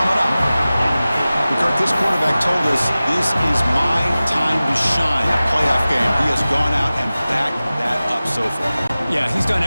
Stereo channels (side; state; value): both; inverted; correlation -0.97